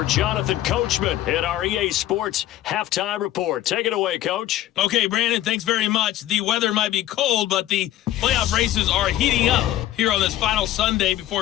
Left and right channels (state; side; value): quieter; right; 13.4 dB